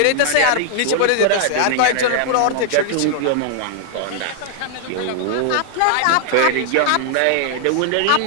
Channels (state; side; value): different; both; correlation -0.01